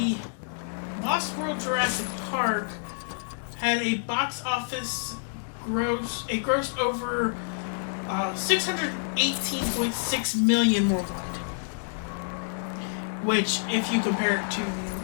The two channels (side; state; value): right; silent; 58 dB below the other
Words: Lost World Jurassic Park had a box office grossed over $618.6 million worldwide. Which, if you compare it to